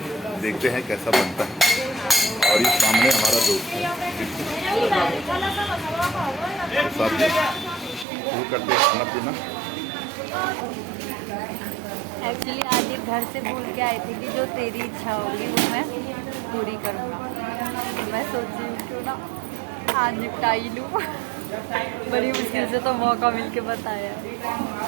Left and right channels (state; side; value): drops out; left; at 8.1 s